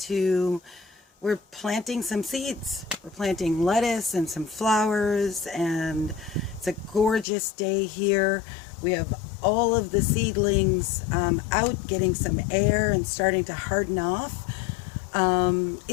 we're planting some seeds. We're planting lettuce and some flowers, and it's a gorgeous day here. We have all of the seedlings out getting some air and starting to harden off.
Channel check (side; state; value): right; drops out; at 7.2 s